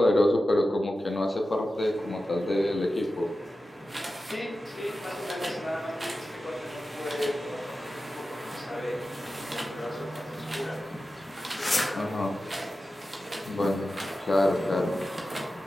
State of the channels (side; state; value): both; normal; correlation 0.93